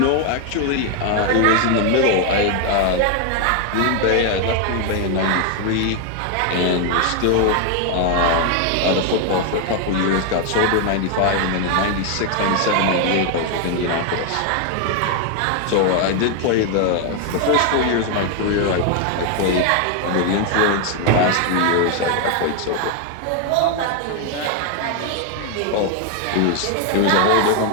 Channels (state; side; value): different; both; correlation 0.01